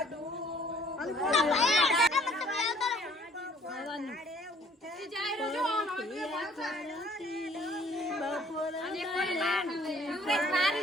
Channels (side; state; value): both; normal; correlation 0.58